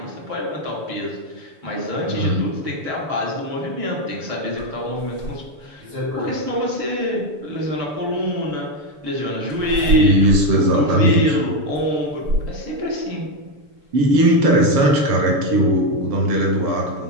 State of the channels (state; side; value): late; left; 6.9 ms